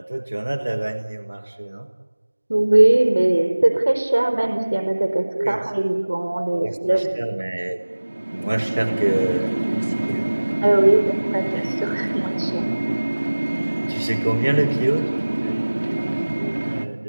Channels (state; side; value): inverted; both; correlation -1.00